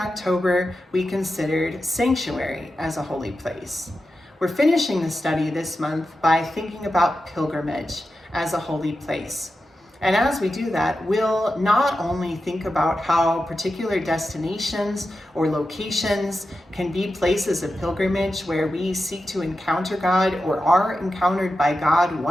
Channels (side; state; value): both; normal; correlation 0.91